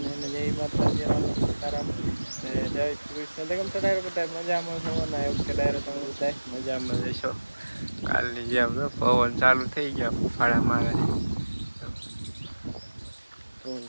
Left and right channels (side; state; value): both; inverted; correlation -1.00